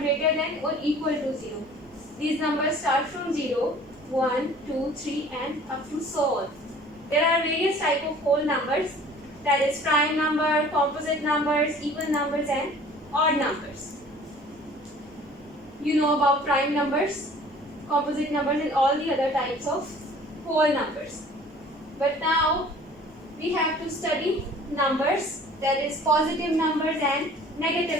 than or equal to 0. These numbers start from 0, 1, 2, 3 and up to so on. There are various types of whole numbers, that is prime number, composite numbers, even numbers and odd numbers. You know about prime numbers, composite numbers and all the other types of whole numbers. But now we have to study numbers, that is positive numbers and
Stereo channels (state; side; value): normal; both; correlation 0.49